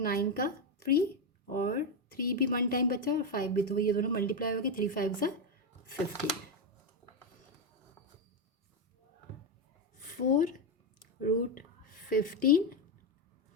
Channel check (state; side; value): normal; both; correlation 0.07